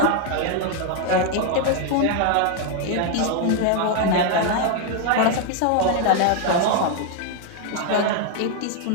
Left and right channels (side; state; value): both; different; correlation 0.00